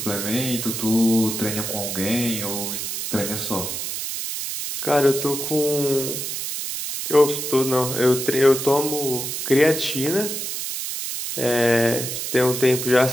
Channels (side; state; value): right; noise; hiss, 4 dB below the sound